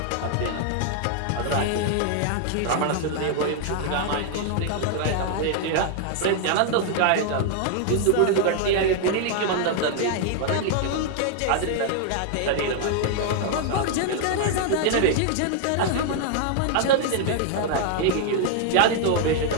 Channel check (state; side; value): different; both; correlation 0.00